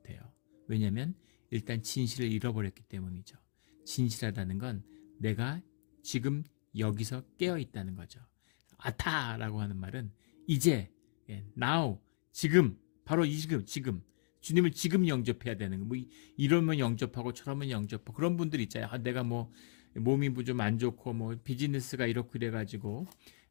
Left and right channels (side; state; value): right; silent; digital silence